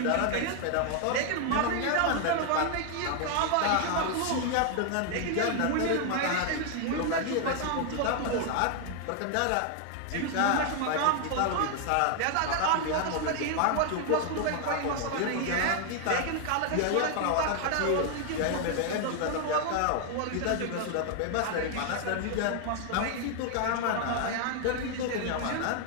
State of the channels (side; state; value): both; different; correlation 0.00